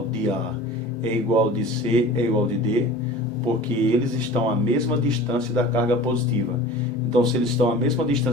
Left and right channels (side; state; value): both; normal; correlation 0.39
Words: de A é igual ao de C, é igual ao de D? Porque eles estão à mesma distância da carga positiva. Então, se eles estão à mesma